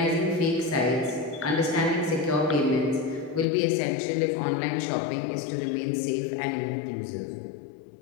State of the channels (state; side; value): drops out; right; at 3.5 s